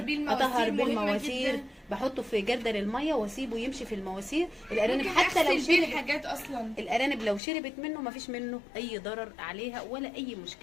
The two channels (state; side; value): drops out; right; at 7.4 s